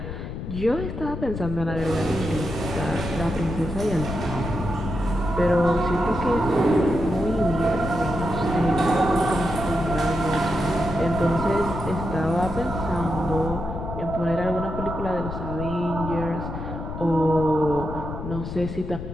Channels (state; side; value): noise; left; rumble, 7 dB below the sound